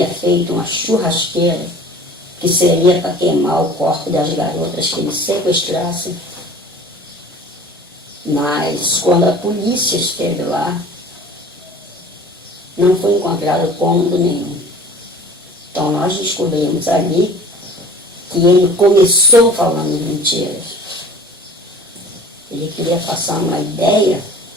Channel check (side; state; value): both; normal; correlation 0.45